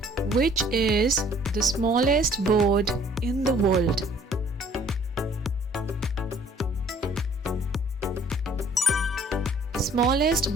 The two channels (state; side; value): normal; both; correlation 0.57